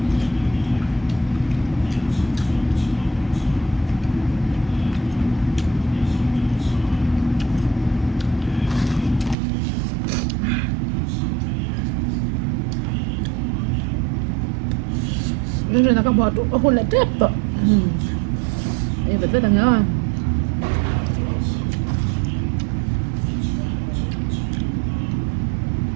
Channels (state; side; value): drops out; left; at 9.3 s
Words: Nên là các bạn hôn lại tiếp rồi. Em vẫn rất là ngon.